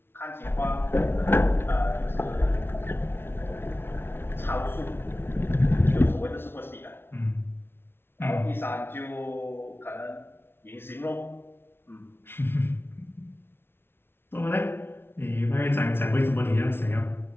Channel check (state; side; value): late; right; 0.11 ms